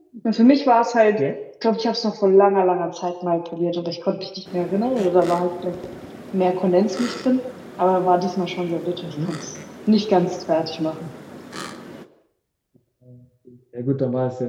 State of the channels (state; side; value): identical; both; correlation 1.00